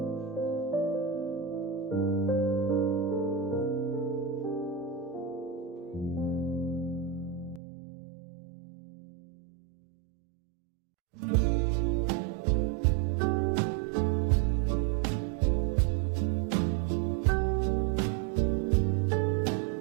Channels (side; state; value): left; drops out; at 7.6 s